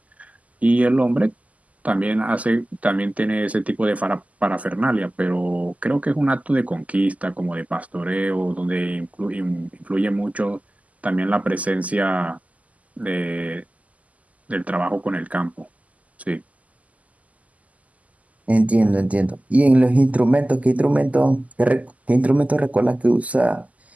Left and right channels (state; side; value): late; left; 0.073 ms